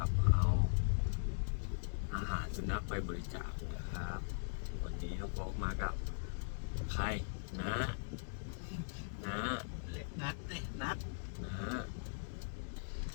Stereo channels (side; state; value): right; silent; digital silence